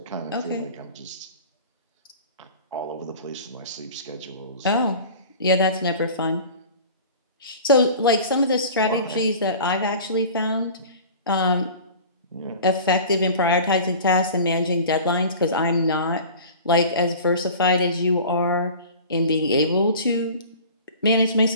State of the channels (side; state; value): both; inverted; correlation -0.40